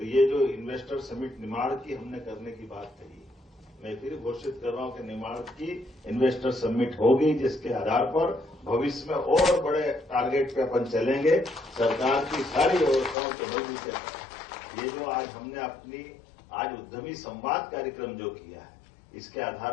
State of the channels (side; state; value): right; drops out; at 13.2 s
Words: ये जो इन्वेस्टर समिट निमाड़ की हमने करने की बात कही, मैं फिर घोषित कर रहा हूं कि निमाड़ की इन्वेस्टर समिट होगी, जिसके आधार पर भविष्य में और बड़े टारगेट पे अपन चलेंगे। सरकार की सारी व्यवस्थाओं को मजबूत करना। ये जो आज हमने अपनी आज उद्यमी संवाद कार्यक्रम जो किया है, इसके